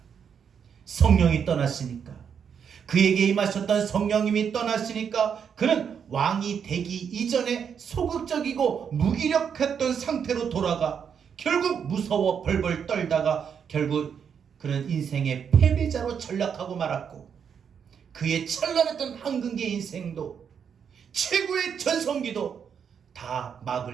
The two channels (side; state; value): left; quieter; 7.3 dB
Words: 성령이 떠났으니까, 그에게 임하셨던 성령님이 떠났으니까 그는 왕이 되기 이전에 소극적이고 무기력했던 상태로 돌아가 결국 무서워 벌벌 떨다가 결국 그는 인생의 패배자로 전락하고 말았고, 그의 찬란했던 황금기의 인생도, 최고의 전성기도 다